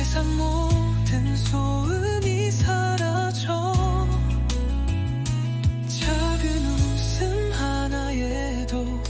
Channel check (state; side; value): identical; both; correlation 1.00